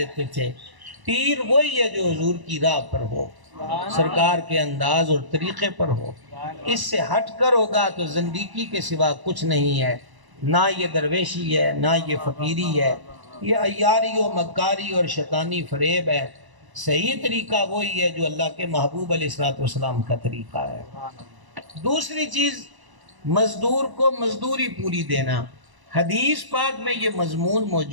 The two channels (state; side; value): late; left; 1.0 ms